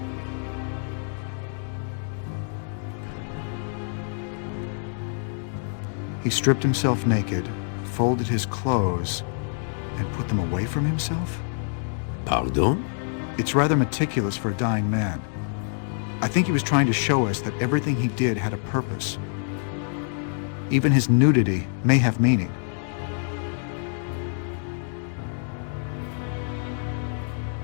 He stripped himself naked, folded his clothes, and put them away from himself? Pardon? It's rather meticulous for a dying man. I think he was trying to show us that everything he did had a purpose. Even his nudity may have meaning.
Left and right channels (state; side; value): silent; right; 59 dB below the other